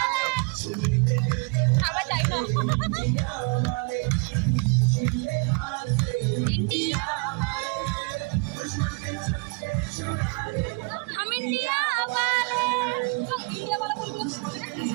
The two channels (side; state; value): left; quieter; 32.7 dB